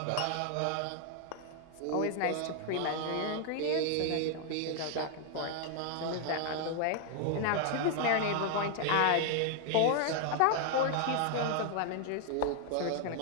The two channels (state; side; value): different; both; correlation 0.00